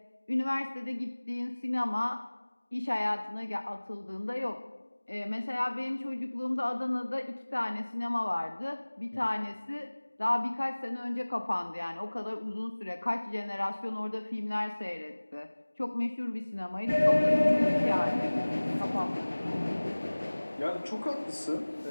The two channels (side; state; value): both; inverted; correlation -1.00